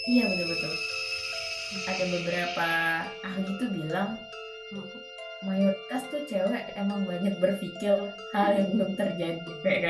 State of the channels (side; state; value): both; identical; correlation 1.00